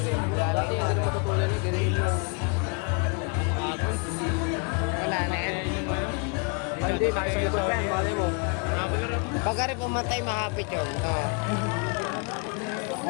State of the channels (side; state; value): right; quieter; 34.2 dB